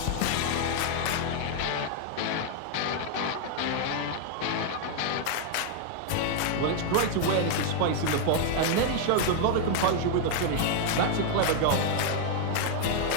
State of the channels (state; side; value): different; both; correlation 0.00